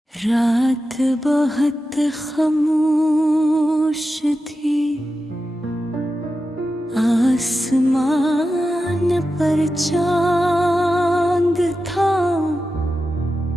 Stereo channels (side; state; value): both; normal; correlation 0.91